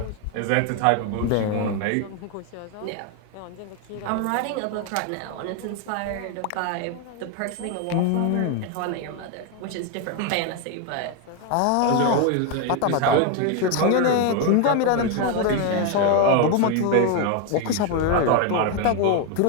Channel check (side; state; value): both; different; correlation 0.01